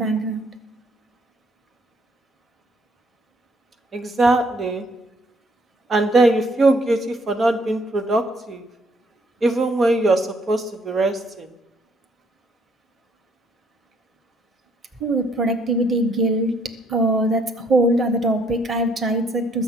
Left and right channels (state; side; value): normal; both; correlation 0.67